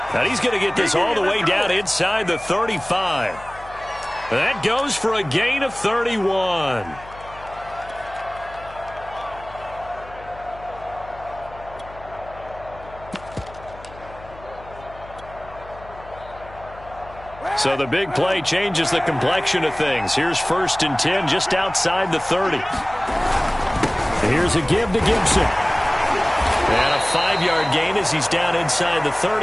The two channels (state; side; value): noise; left; hum, 19 dB below the sound